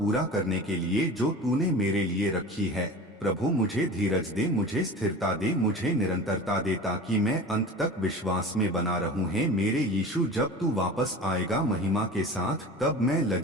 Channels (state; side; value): normal; both; correlation 0.36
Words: करने के लिए जो तूने मेरे लिए रखी है। प्रभु, मुझे धीरज दे, मुझे स्थिरता दे, मुझे निरंतरता दे, ताकि मैं अंत तक विश्वास में बना रहूं। है मेरे यीशु, जब तू वापस आएगा महिमा के साथ, तब मैं